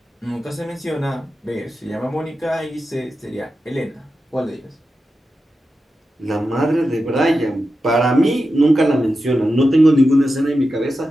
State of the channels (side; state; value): both; normal; correlation 0.90